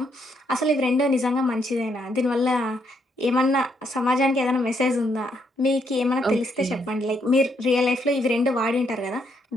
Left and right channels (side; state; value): both; normal; correlation 0.75